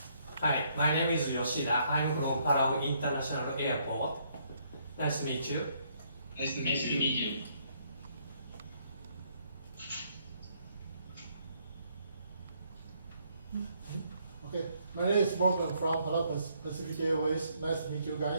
Hi, my name is Yoshida. I'm from Palau International Airport. Nice to meet you. Nice to meet you. Okay, my name is Morgan from Palau Pacific Airways. Nice to meet you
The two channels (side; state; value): both; inverted; correlation -0.69